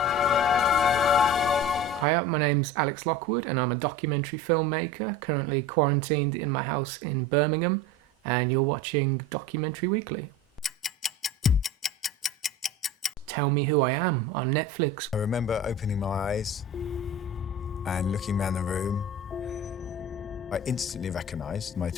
Hi, my name's Alex Lockwood and I'm a documentary filmmaker currently quarantined in my house in Birmingham, and you're watching Documentary Weekly. Tell Me Who I Am on Netflix. I remember opening my eyes and looking around the room. I instantly recognised my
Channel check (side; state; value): both; normal; correlation 0.34